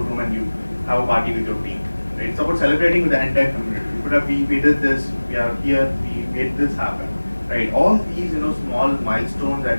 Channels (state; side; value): inverted; both; correlation -1.00